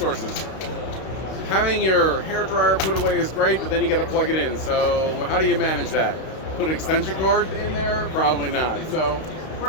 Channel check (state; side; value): late; right; 32 ms